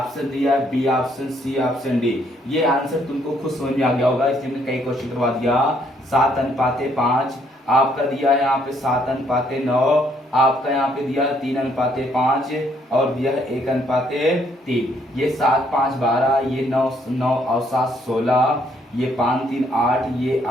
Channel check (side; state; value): both; normal; correlation 0.68